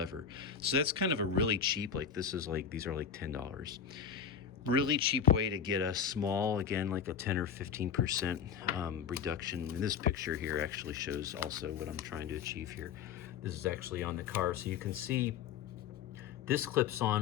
So that's kind of a really cheap, like these are like $10. Really cheap way to get a small, again, like a 10 or 15% reduction. And this picture here actually shows also what I'm trying to achieve here. This is actually on the car, so you can see this clips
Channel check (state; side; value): quieter; right; 7.4 dB